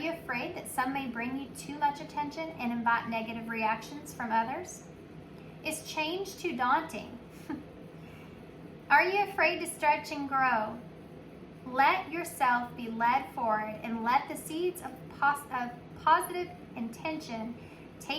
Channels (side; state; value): both; identical; correlation 1.00